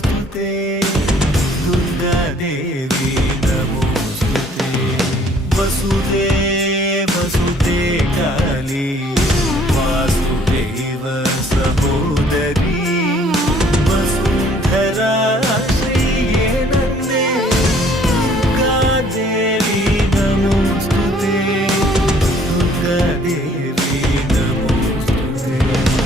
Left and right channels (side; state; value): both; normal; correlation 0.59